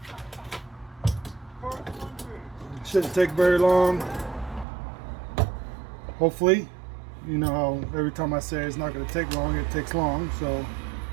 Shouldn't take very long. Hopefully, you know how every time I say it's not going to take long, it takes long. So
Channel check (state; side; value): drops out; left; at 4.7 s